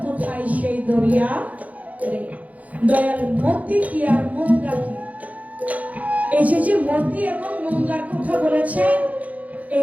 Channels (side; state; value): left; late; 0.072 ms